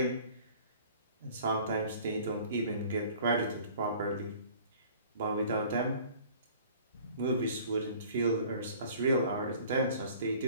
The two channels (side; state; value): both; inverted; correlation -0.49